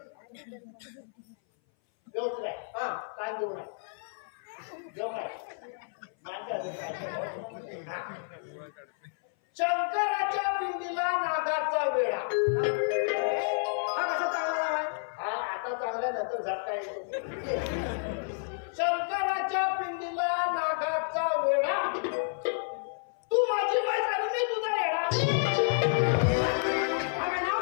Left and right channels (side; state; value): right; silent; 57 dB below the other